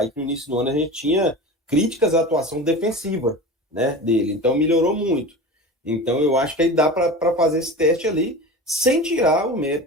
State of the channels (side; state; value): both; normal; correlation 0.32